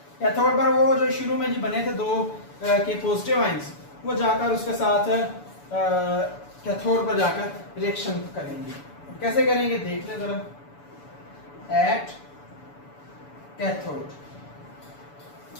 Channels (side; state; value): right; late; 6.9 ms